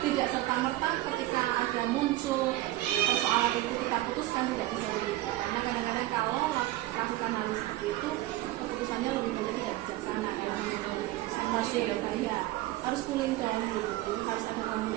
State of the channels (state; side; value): quieter; left; 16.6 dB